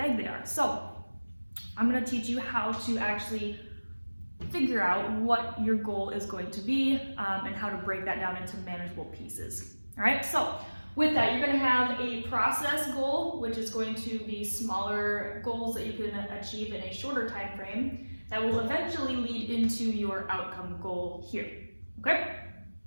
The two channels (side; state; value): both; inverted; correlation -1.00